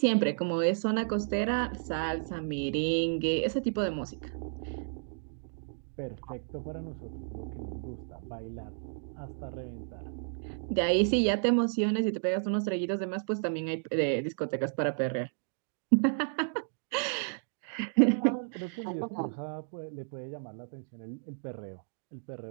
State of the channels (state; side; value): silent; left; digital silence